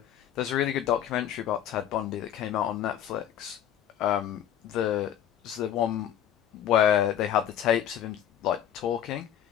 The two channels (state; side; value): quieter; right; 10.2 dB